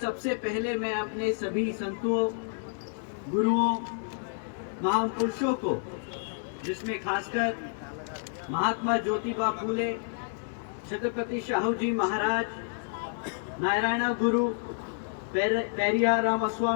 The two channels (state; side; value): silent; right; digital silence